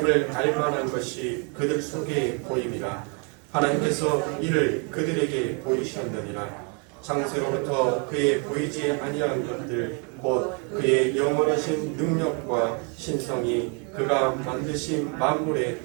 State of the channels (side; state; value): left; quieter; 36.4 dB